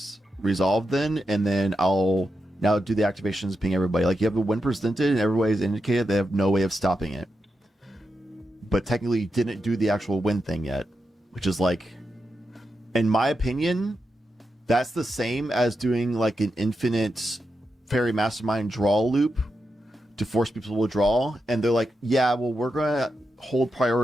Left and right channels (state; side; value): normal; both; correlation 0.87